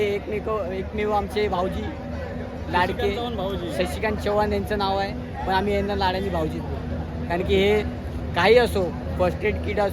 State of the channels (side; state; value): both; identical; correlation 1.00